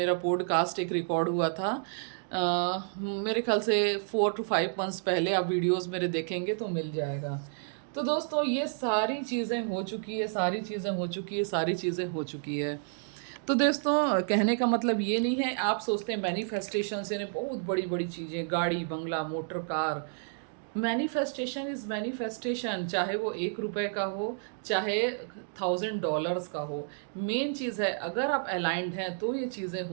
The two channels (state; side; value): silent; left; digital silence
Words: पॉडकास्ट एक रिकॉर्ड हुआ था मेरे ख्याल से 4 to 5 months पहले। आप वीडियोस मेरे देखेंगे तो मिल जाएगा। तो दोस्तों ये सारी चीज़ें हो चुकी है, सारी चीज़ें हो चुकी है, सारी चीज़ें हो चुकी है। तो दोस्तों कहने का मतलब ये नहीं है, आप सोचते हैं मैनिफेस्टेशन से बहुत बड़ी बड़ी चीज़ें, गाड़ी बंगला motor car. Manifestation is manifestation, चाहे वो 1 रुपए का हो, चाहे $1000 का हो। मेन चीज़ है अगर आप अलाइंड हैं तो ये चीज़ें